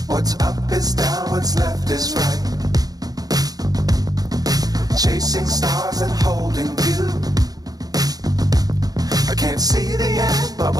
What's up is down, what's left is right. Chasing stars and holding you. I can't see the end, but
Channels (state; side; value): late; left; 0.18 ms